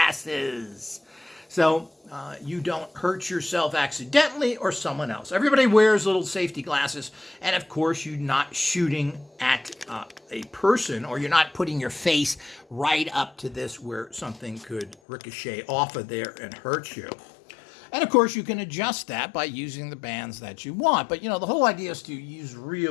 so you don't hurt yourself accidentally or someone else. Everybody wears little safety glasses, and of course, you're not shooting at a person, or you're not putting your face right up to this where something could ricochet off of there and hurt you. And of course, you can adjust that by using the bands that you want. But, you know, the whole idea is to use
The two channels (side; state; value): right; drops out; at 15.0 s